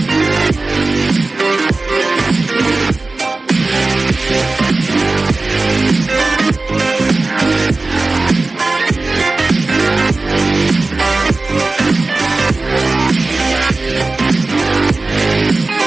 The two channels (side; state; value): left; quieter; 3.3 dB